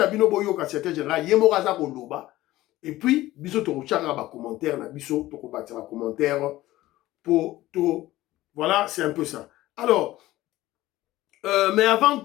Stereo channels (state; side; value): quieter; right; 16.5 dB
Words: bino boyo ka secrétaire général, Yemoraza Koloba, et puis, biso Toroche a commentaire, na biso Toko batira commentaire pour tout. Voilà, c'est un peu ça. Alors, mais avant